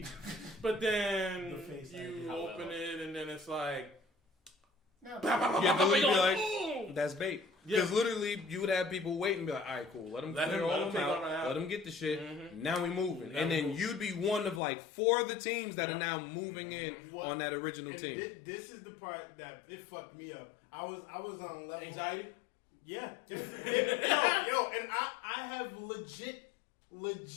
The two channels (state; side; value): drops out; right; at 14.6 s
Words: but then you open it and then it's like. You have to literally be like, that's bait. Because literally, you would have people wait and be like, all right, cool. Let them clear all them out. Let them get the shit. Now we moving. And then you'd be one of like 4 of the teams that are now moving in on that original team. This is the part that it fucked me up. I was on level. Anxiety? Yeah. Yo, and I have legit